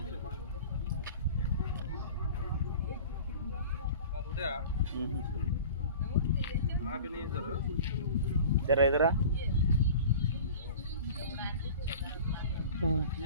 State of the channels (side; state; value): both; inverted; correlation -0.39